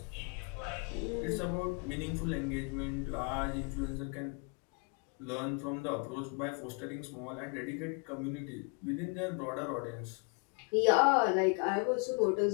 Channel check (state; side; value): quieter; right; 36.4 dB